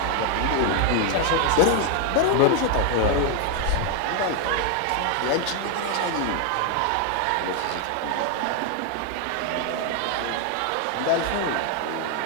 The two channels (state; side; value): different; both; correlation 0.00